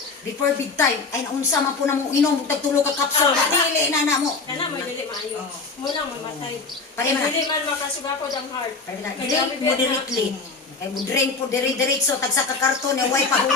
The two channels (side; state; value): right; quieter; 4.2 dB